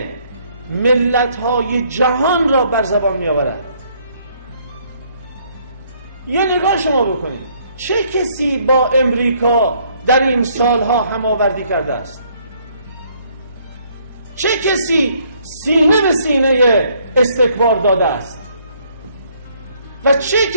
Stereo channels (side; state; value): both; inverted; correlation -0.66